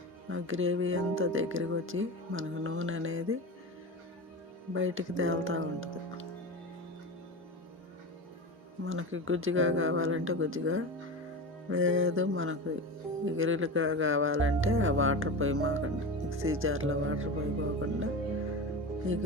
ఆ గ్రేవీ అంతా దగ్గరికి వచ్చి మనకు నూనె అనేది బయటికి తేలుతూ ఉంటుంది. మనకి గుజ్జుగా కావాలంటే గుజ్జుగా, లేదు మనకు ఎగురులుగా కావాలంటే ఆ వాటర్ పోయమాకండి. మిక్సీ జార్లో వాటర్ పోయిపోకుండా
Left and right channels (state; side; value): normal; both; correlation 0.26